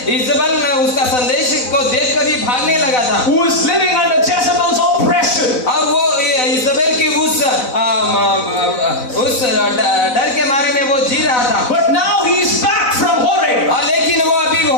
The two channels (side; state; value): right; late; 4.0 ms